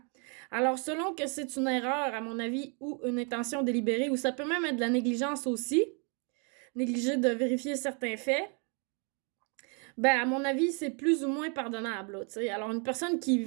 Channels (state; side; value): quieter; left; 37.0 dB